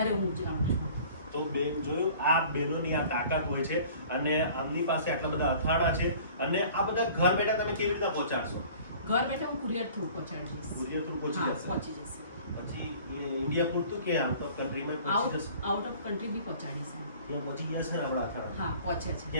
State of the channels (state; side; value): inverted; both; correlation -0.48